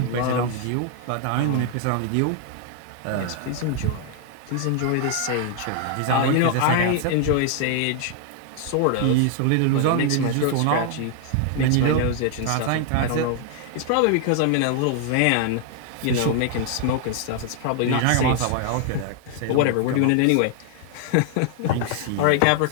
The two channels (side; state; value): both; different; correlation 0.00